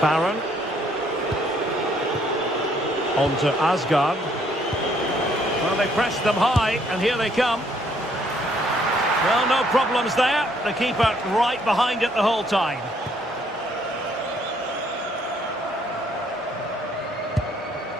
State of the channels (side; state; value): both; normal; correlation 0.66